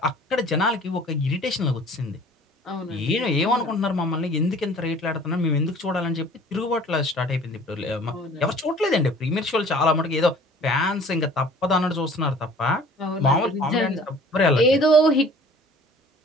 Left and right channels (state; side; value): normal; both; correlation 0.50